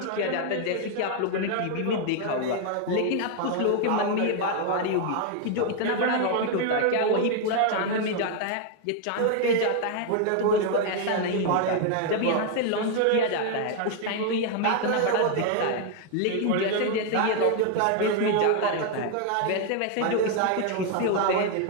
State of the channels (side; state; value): both; different; correlation 0.00